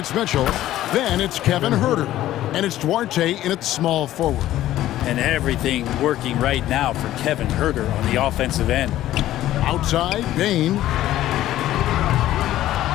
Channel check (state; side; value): quieter; right; 13.9 dB